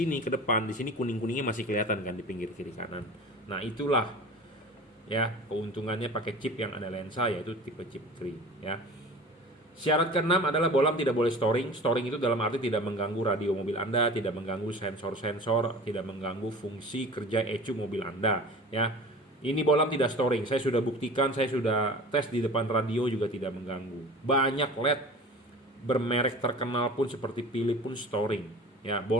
ke depan, di sini kuning-kuningnya masih kelihatan kan di pinggir kiri kanan. Nah, itulah ya keuntungannya pakai chip yang ada lensa, yaitu tipe chip 3, ya. Syarat keenam adalah bolam tidak boleh storing. Storing itu dalam arti tidak mengganggu radio mobil Anda, tidak mengganggu sensor-sensor, tidak mengganggu fungsi kerja ECU mobil Anda, ya. Ini bolam tidak storing. Saya sudah buktikan, saya sudah tes di depan radio juga tidak mengganggu. Banyak LED bermerek terkenal pun seperti Philips pun storing, ya.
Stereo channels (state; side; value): normal; both; correlation 0.38